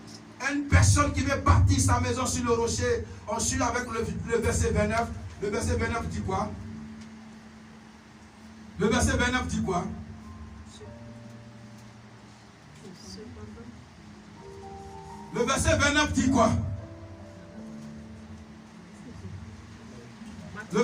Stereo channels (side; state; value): both; identical; correlation 1.00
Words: une personne qui veut bâtir sa maison sur le rocher, on suit avec le verset 29. Le verset 29 dit quoi? Le verset 29 dit quoi? Le verset 29 dit quoi? Le